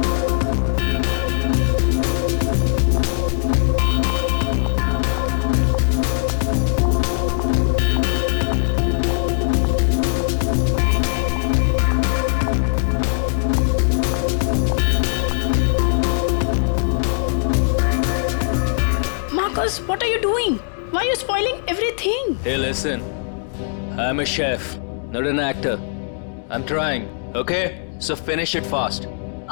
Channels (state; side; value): silent; right; digital silence